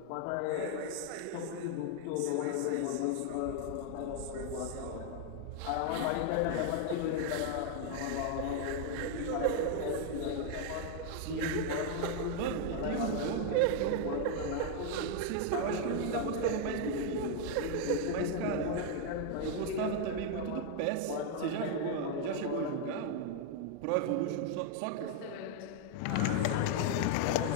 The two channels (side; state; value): both; different; correlation 0.00